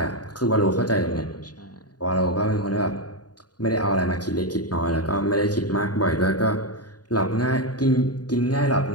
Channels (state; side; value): late; right; 0.69 ms